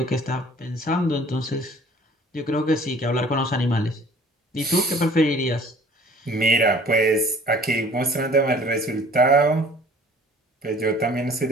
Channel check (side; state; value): both; normal; correlation 0.51